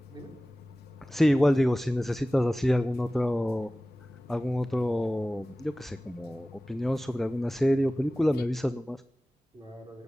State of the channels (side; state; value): both; normal; correlation 0.97